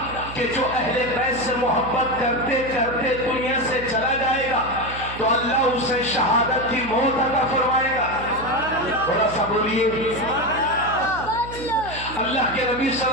کہ جو اہل بیت سے محبت کرتے کرتے دنیا سے چلا جائے گا تو اللہ اسے شہادت کی موت عطا فرمائے گا۔ تھوڑا سا بولیے۔ اللہ کے نبی صلی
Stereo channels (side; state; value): right; noise; hum, 13 dB below the sound